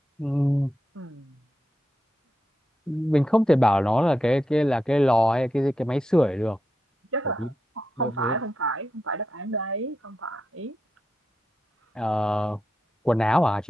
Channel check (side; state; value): both; normal; correlation 0.87